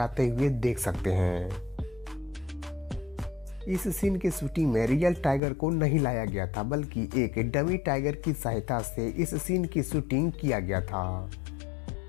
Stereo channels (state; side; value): drops out; right; at 5.4 s